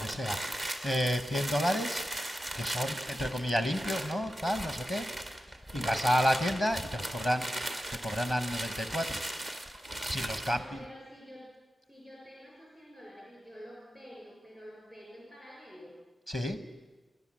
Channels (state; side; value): normal; both; correlation 0.91